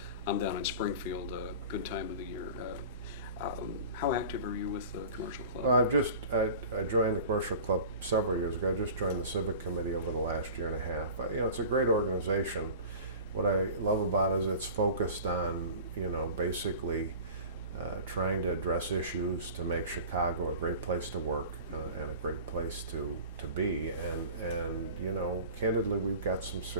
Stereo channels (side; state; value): both; inverted; correlation -0.39